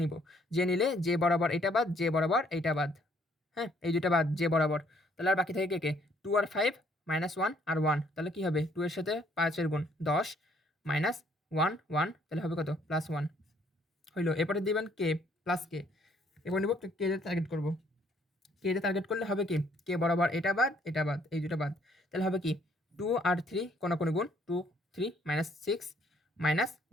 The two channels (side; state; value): both; normal; correlation 0.64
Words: নিব, জে নিলে জে বরাবর এটা বাদ জে বরাবর এইটা বাদ, হ্যাঁ এই দুইটা বাদ জে বরাবর। তাহলে আর বাকি থাকে কে 2 আর 5 -1 আর 1, তাহলে কি হবে 2 এর সাথে 5 এর গুণ 10 -1 1, তাহলে হবে কত +1 হইলো। এরপরে দিবেন কে প্লাস কে, এবার নিব কে তে টার্গেট করব, কে তে টার্গেট করলে হবে কি কে বরাবর এটা বাদ এই দুটো বাদ, তাহলে হবে কি 2 আর 3 কোনাকুনি গুণ 2 3 -6